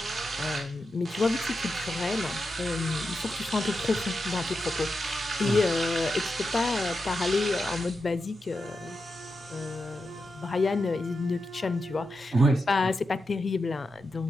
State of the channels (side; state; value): both; normal; correlation 0.88